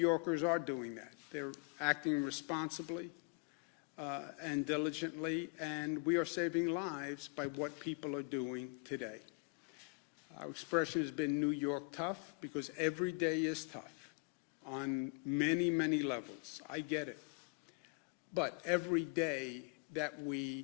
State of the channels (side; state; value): right; quieter; 33.9 dB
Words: are doing that. They're acting responsibly and diligently, and we are saving lives by what people are doing today. Our expression has been New York tough because every day is tough on many, many levels. I get it. But every day that